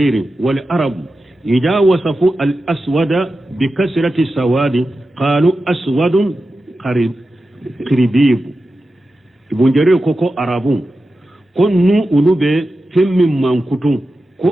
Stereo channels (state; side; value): normal; both; correlation 0.92